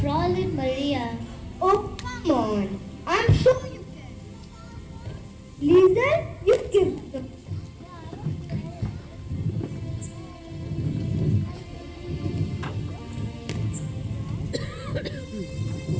Maria. Oh, come on. I'm sure you can. Lisa, you give the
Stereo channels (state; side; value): identical; both; correlation 1.00